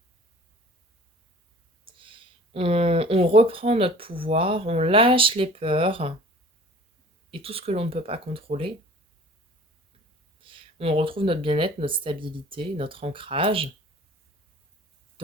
On reprend notre pouvoir, on lâche les peurs et tout ce que l'on ne peut pas contrôler. On retrouve notre bien-être, notre stabilité, notre ancrage.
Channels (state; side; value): normal; both; correlation 0.46